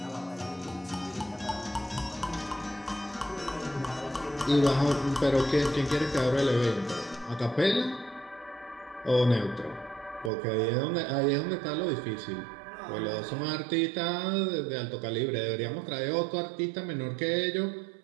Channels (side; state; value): left; drops out; at 10.3 s